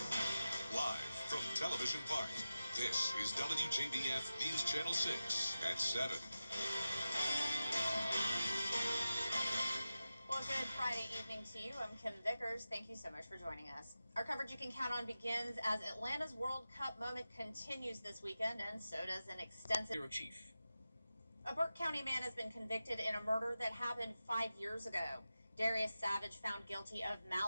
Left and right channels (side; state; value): both; inverted; correlation -0.93